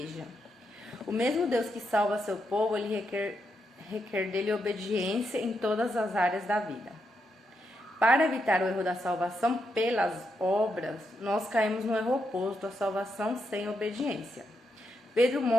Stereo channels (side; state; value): both; normal; correlation 0.82